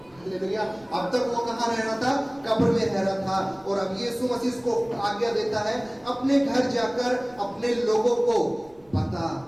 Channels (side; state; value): right; noise; rumble, 28 dB below the sound